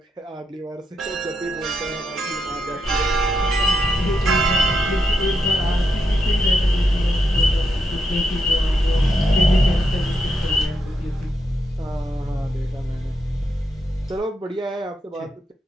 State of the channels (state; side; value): normal; both; correlation 0.82